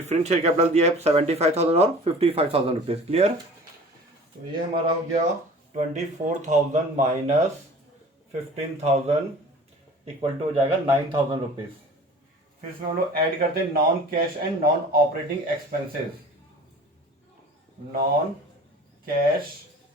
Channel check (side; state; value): both; normal; correlation 0.44